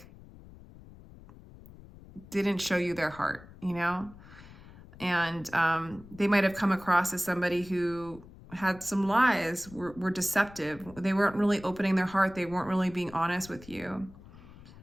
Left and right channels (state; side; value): noise; left; rumble, 20 dB below the sound